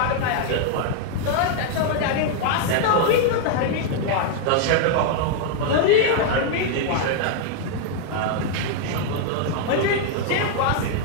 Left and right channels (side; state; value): both; different; correlation 0.00